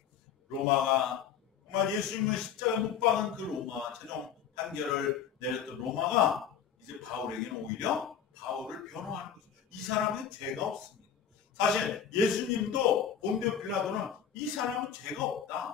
로마가 정말 예수님을 십자가에 못 박은 그 로마, 최종 판결을 내렸던 로마가 이제 바울에게는 오히려 바울을 변호하는 거죠. 이 사람은 죄가 없습니다. 사실 예수님도 본디오 빌라도는 이 사람은 죄가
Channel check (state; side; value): quieter; right; 8.1 dB